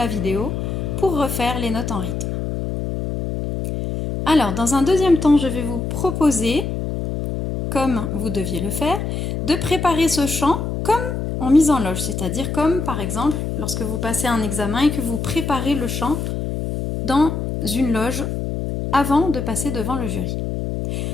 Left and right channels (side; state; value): left; noise; hum, 3 dB below the sound